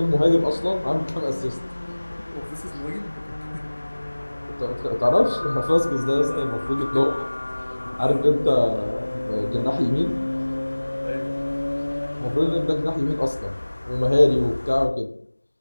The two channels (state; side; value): inverted; both; correlation -1.00